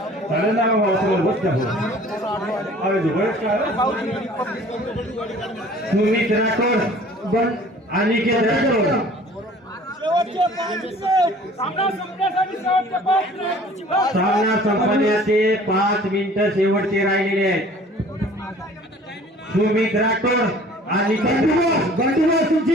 चालेल ना बाबा सगळं बस अरे बरेच काय सुमित राठोड पण अनिकेत राठोड सामना संपण्याचे 5 मिनिटं शेवटचे राहिलेले आहेत सुमित राठोड आणि बंडूबास तुमची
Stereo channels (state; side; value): normal; both; correlation 0.50